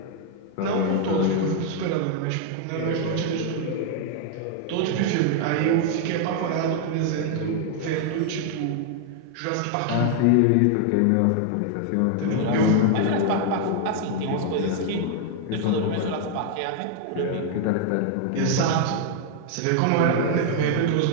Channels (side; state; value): both; different; correlation 0.00